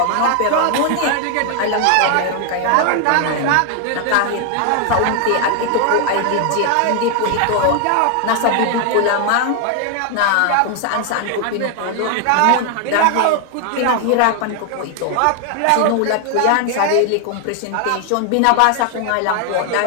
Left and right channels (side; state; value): both; different; correlation 0.00